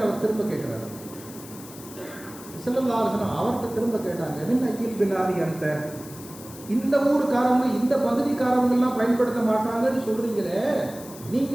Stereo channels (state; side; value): noise; left; hiss, 17 dB below the sound